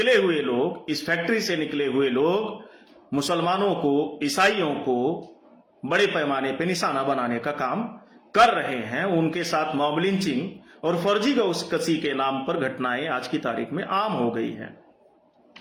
हुए लोग, इस फैक्ट्री से निकले हुए लोग मुसलमानों को, ईसाइयों को बड़े पैमाने पे निशाना बनाने का काम कर रहे हैं। उनके साथ मॉब लिंचिंग और फर्जी गौकशी के नाम पर घटनाएं आज की तारीख में आम हो गई हैं।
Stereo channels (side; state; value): both; identical; correlation 1.00